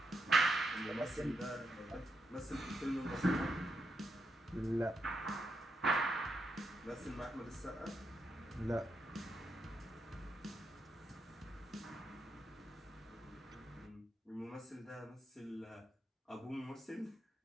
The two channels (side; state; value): both; normal; correlation 0.82